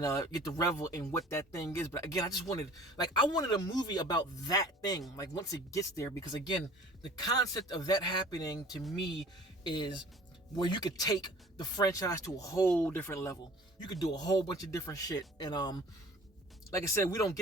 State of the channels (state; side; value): normal; both; correlation 0.47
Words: get to revel in what that thing is. But again, I wanted a movie about that thing, like once it gets there, because again, the concept of that happening to me is where you could take the franchise to a whole different level. You could do a whole bunch of different shit. And like I said, we don't